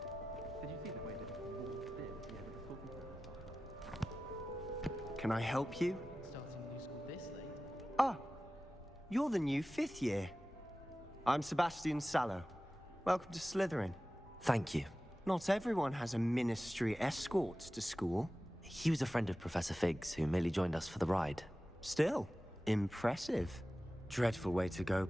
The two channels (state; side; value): normal; both; correlation 0.95